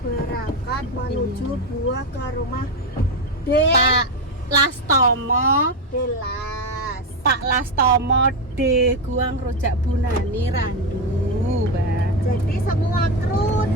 berangkat menuju buah ke rumah Pak Lastomo, Delas. Pak Lastomo de Guang Rojak Bunani Randu, Mbak. Jadi semua kru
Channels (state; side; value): normal; both; correlation 0.10